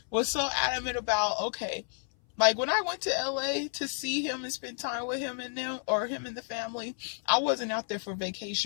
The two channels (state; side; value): silent; right; 57 dB below the other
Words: was so adamant about, okay, like when I went to LA to see him and spend time with him and them, or him and the family, I wasn't out there for